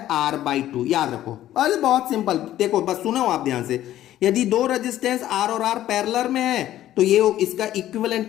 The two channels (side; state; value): right; quieter; 13.1 dB